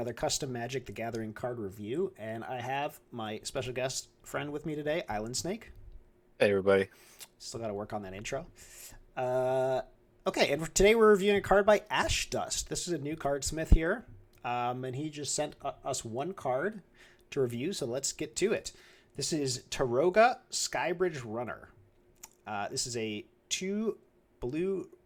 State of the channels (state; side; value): identical; both; correlation 1.00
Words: custom Magic the Gathering card review, and I have my special guest friend with me today, Islandsnake. Hey everybody. Still got to work on that intro. Uh, okay, and today we're reviewing a card by Ashdust. This is a new cardsmith here, and he just sent us one card to review, so let's get to it. This is Taroga Skybridge Runner. This is a 2 blue